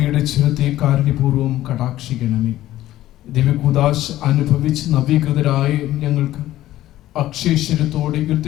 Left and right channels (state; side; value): quieter; right; 14.4 dB